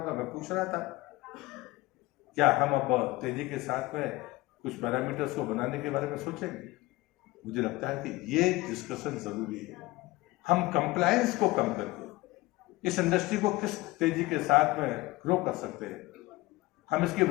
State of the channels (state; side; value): quieter; right; 20.0 dB